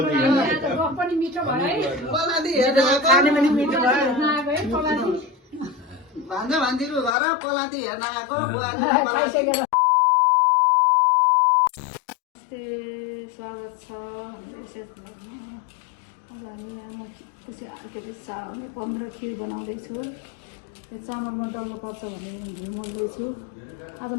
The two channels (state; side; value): drops out; right; at 7.2 s